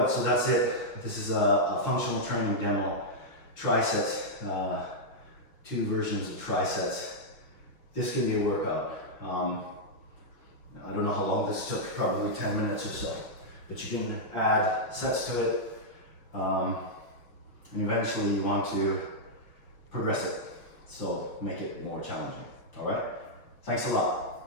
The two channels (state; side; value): late; right; 5.6 ms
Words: so that's it. This is a functional training demo. Trisets, 2 versions of trisets. This can be a workout. I don't know how long this took, probably 10 minutes or so. But you can add sets to it. And eventually you want to progress it. So make it more challenging. All right? Thanks a